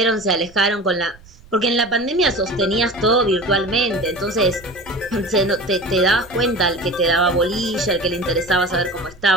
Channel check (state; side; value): noise; right; rumble, 24 dB below the sound